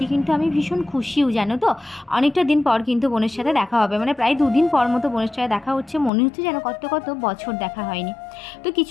কিন্তু আমি ভীষণ খুশিও, জানো তো, অনেকটা দিন পর কিন্তু বোনের সাথে দেখা হবে, মানে প্রায় 2 দিন পর মতো বোনের সাথে দেখা হচ্ছে। মনে হচ্ছে যেন কত বছর দেখা হয়নি। তো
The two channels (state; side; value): drops out; right; at 6.1 s